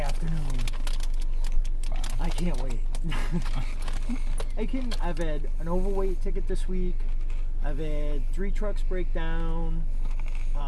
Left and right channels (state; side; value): identical; both; correlation 1.00